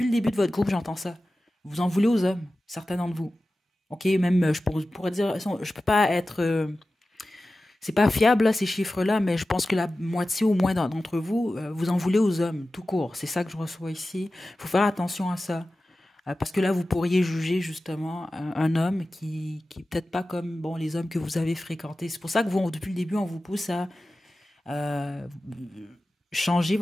le début de votre groupe, j'entends ça. Vous en voulez aux hommes, certains d'entre vous. OK, même, je pourrais dire, je peux pas être... c'est pas fiable, là, ces chiffres-là, mais je pense que la moitié au moins d'entre vous, vous en voulez aux hommes, tout court. C'est ça que je reçois ici. Il faut faire attention à ça. Parce que là, vous pourriez juger justement un homme qui est peut-être pas comme bon, les hommes que vous avez fréquentés. C'est pour ça que vous, depuis le début, on vous pousse à euh, changer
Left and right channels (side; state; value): both; normal; correlation 0.95